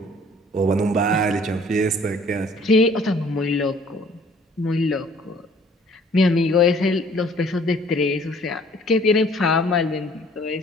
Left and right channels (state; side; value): normal; both; correlation 0.56